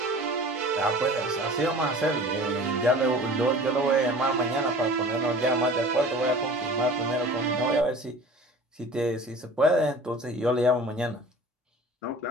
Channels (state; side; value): normal; both; correlation 0.43